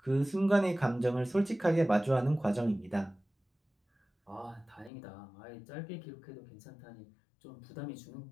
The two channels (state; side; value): drops out; right; at 4.9 s